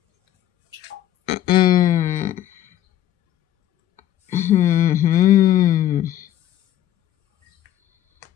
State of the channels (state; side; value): quieter; right; 12.4 dB